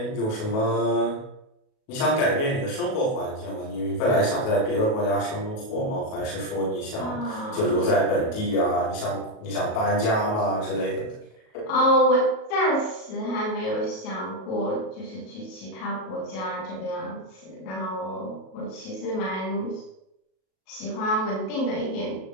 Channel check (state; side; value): late; right; 37 ms